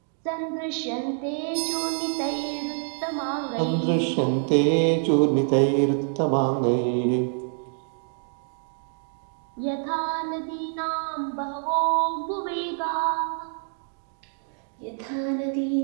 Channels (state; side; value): silent; left; 61 dB below the other